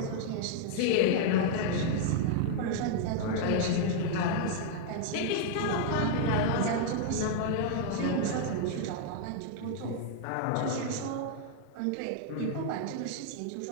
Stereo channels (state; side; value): different; both; correlation -0.01